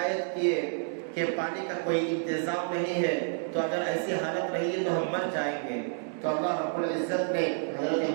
کیے کہ پانی کا کوئی انتظام نہیں ہے، تو اگر ایسی حالت رہی تو ہم مر جائیں گے۔ تو اللہ رب العزت نے حضرت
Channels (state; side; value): silent; left; digital silence